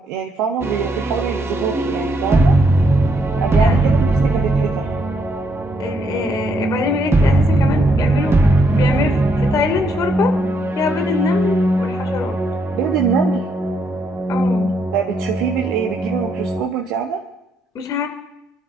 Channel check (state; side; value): normal; both; correlation 0.74